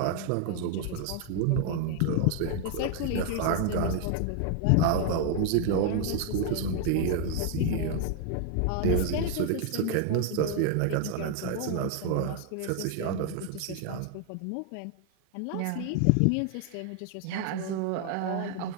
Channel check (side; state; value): both; different; correlation 0.00